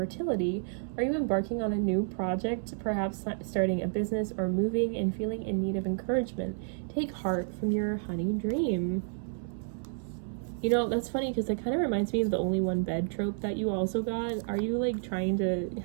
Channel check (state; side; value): silent; left; 57 dB below the other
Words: Are you embarking on a new project, perhaps starting a business or moving and feeling in need of encouragement? Take heart from your honey dream. You know, that's funny because it kind of reminds me of the only one bed trope that you also got. Are you like trying to